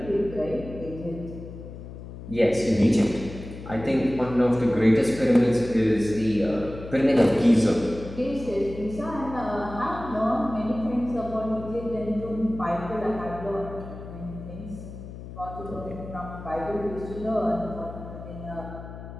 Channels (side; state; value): left; noise; hum, 12 dB below the sound